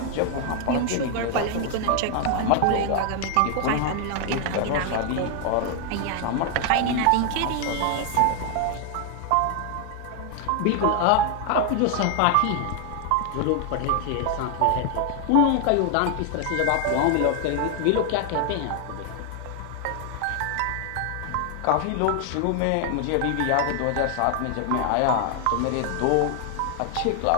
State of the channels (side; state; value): both; different; correlation 0.00